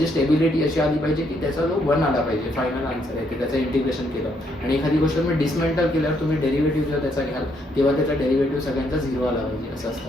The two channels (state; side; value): normal; both; correlation 0.73